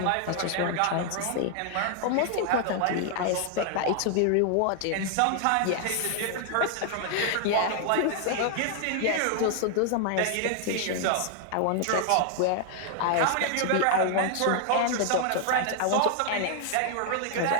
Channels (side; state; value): both; different; correlation 0.00